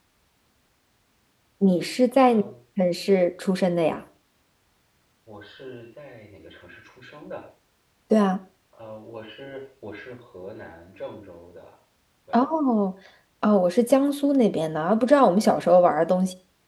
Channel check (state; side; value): identical; both; correlation 1.00